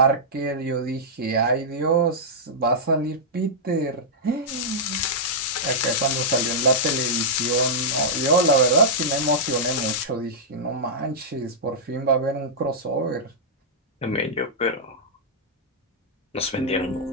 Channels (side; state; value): both; normal; correlation -0.10